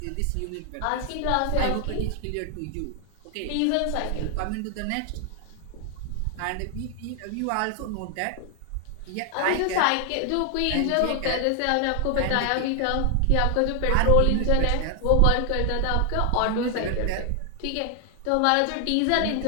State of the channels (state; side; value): different; both; correlation 0.00